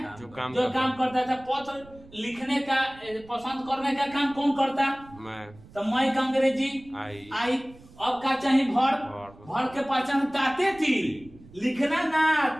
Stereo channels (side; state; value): right; noise; rumble, 22 dB below the sound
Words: जो काम करता है। पत्र लिखने का पसंद करने का काम कौन करता? मैं। तो मैं का अंग्रेजी आई। अब का चाहिए वर्ब, वर्ब के पहचान ताते थी, लिखना ना